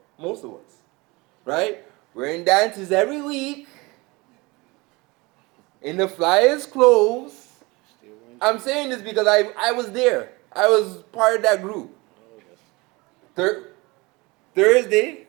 most of us, right? We're in dances every week, in the flyest clothes. I'm saying this because I was there. I was part of that group. Thursday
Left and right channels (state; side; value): quieter; left; 24.4 dB